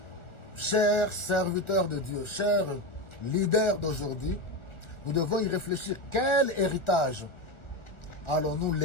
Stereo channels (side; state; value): right; late; 1.4 ms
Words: Chers serviteurs de Dieu, chers leaders d'aujourd'hui, nous devons y réfléchir. Quel héritage allons-nous